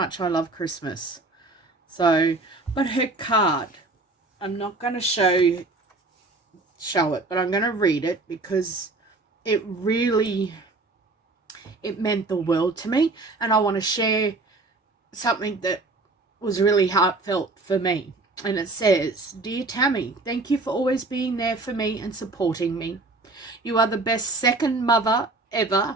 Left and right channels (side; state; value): left; quieter; 3.2 dB